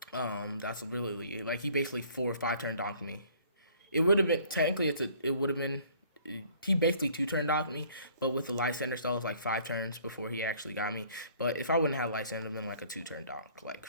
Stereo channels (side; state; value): both; inverted; correlation -0.56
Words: That's really like he basically 4 or 5 turn donked me, It would have been technically it would have been he basically two turn docked me, but with the Lysander stall it was like 5 turns before he actually got me. But if I wouldn't have Lysander, it would have been like a 2 turn dock. Like